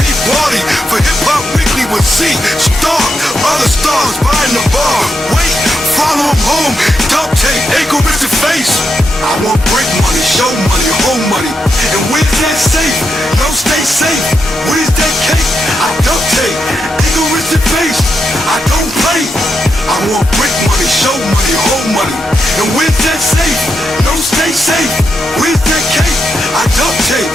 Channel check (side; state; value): both; normal; correlation 0.84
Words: party for Hip Hop Weekly with C. Star, other stars buying the bar. Wait, follow him home, duct tape, egoistic face. I want break money, show money, home money. And where's that safe? No stay safe. Where's that cake? I duct tape, egoistic face. I don't play. I want break money, show money, home money. And where's that safe? No stay safe. Where's that cake? I duct tape,